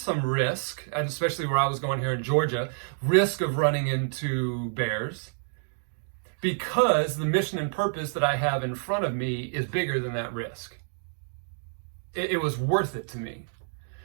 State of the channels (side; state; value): left; silent; digital silence